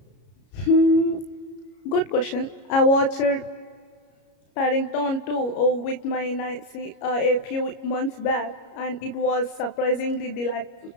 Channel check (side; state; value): right; late; 33 ms